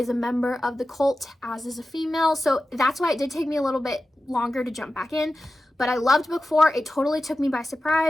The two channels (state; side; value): normal; both; correlation 0.94